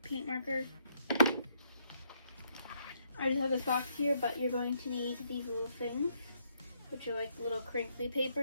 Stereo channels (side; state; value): both; inverted; correlation -0.73